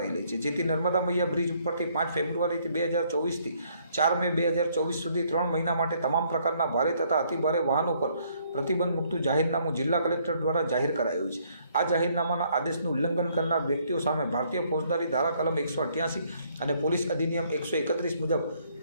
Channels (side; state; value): both; inverted; correlation -0.67